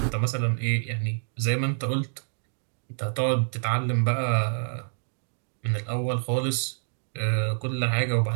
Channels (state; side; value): silent; left; digital silence